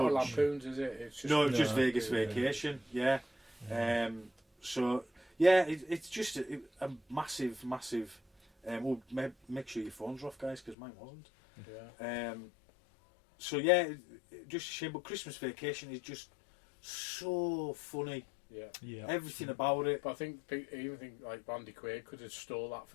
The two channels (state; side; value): drops out; right; at 10.8 s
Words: Lampoons, is it? It's just Vegas Vacation. Yeah. It's just a massive. Make sure your phones are off, guys, because mine wasn't. Just a shame. But Christmas Vacation is just so funny. Everything about it. But I even think like Randy Quaid could have stole that